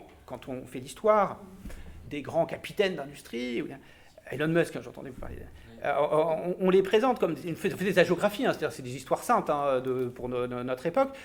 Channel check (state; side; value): identical; both; correlation 1.00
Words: quand on fait l'histoire des grands capitaines d'industrie, Elon Musk, j'entendais vous parler, on les présente comme on fait des hagiographies, c'est-à-dire c'est des histoires saintes pour notre époque.